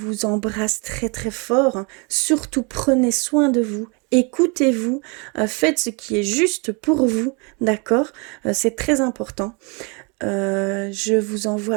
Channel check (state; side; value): quieter; left; 32.1 dB